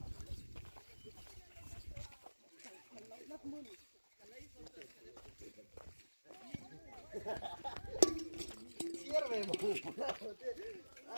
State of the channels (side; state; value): both; inverted; correlation -1.00